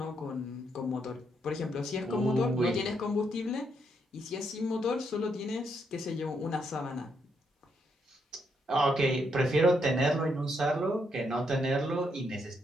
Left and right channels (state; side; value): normal; both; correlation 0.77